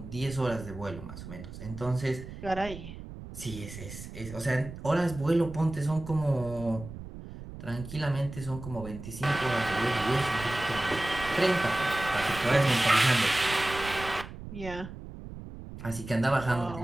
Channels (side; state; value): right; noise; rumble, 12 dB below the sound